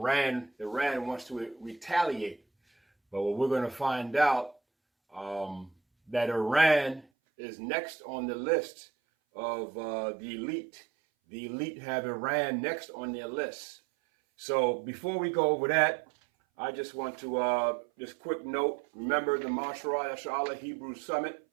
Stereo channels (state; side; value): drops out; left; at 7.1 s